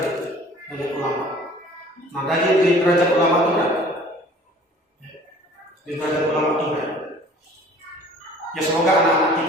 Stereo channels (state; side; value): normal; both; correlation 0.49